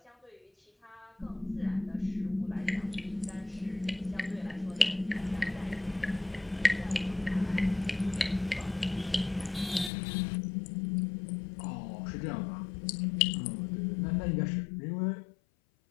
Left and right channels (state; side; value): drops out; right; at 9.9 s